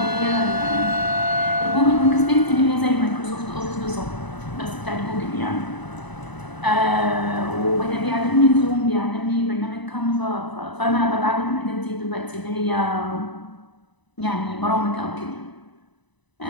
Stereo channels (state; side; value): late; right; 1.0 ms